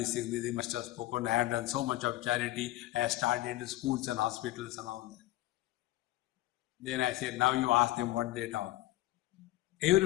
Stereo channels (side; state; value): right; quieter; 16.7 dB